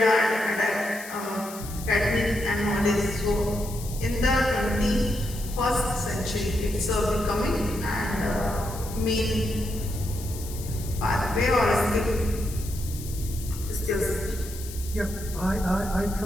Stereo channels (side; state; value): left; noise; hiss, 13 dB below the sound